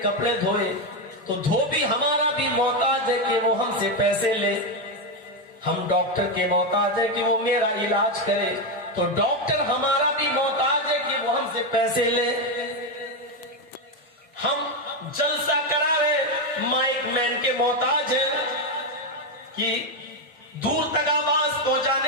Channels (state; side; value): normal; both; correlation 0.07